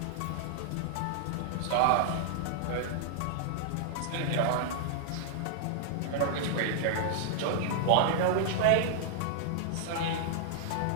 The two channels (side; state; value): both; different; correlation -0.01